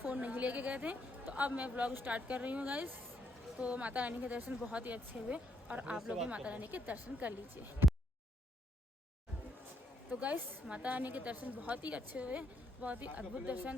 नहीं लेके गए थे। तो अब मैं ब्लॉग स्टार्ट कर रही हूँ गाइस। तो माता रानी के दर्शन बहुत ही अच्छे हुए और आप लोग भी माता रानी के दर्शन कर लीजिए। तो गाइस माता रानी के दर्शन बहुत ही अच्छे हुए, बहुत ही अद्भुत दर्शन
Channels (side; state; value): both; normal; correlation 0.74